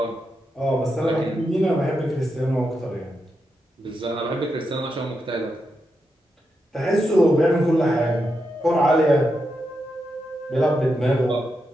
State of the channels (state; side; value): normal; both; correlation 0.85